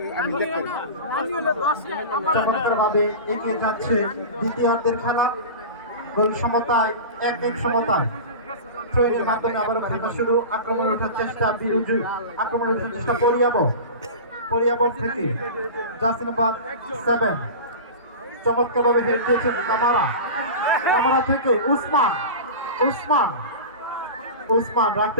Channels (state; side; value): inverted; both; correlation -0.30